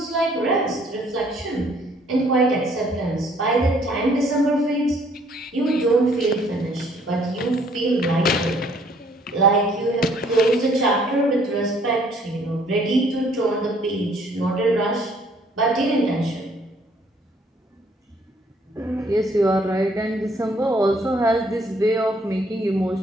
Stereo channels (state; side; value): normal; both; correlation 0.62